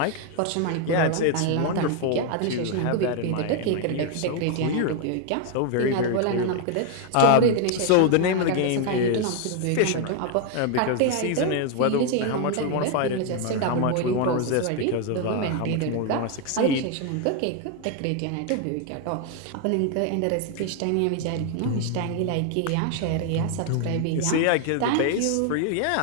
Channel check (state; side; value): different; both; correlation 0.01